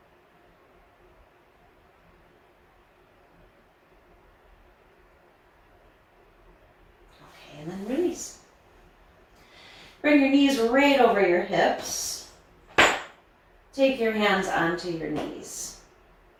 Okay, and then release. Bring your knees right over your hips. Take your hands onto your knees.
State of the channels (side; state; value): both; identical; correlation 1.00